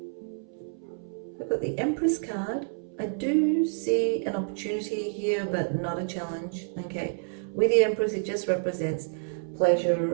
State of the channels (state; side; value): silent; left; 59 dB below the other